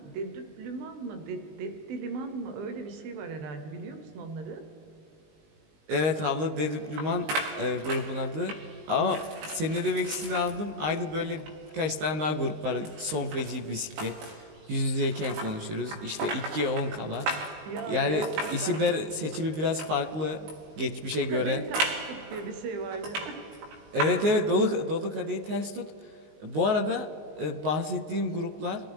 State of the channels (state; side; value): late; left; 19 ms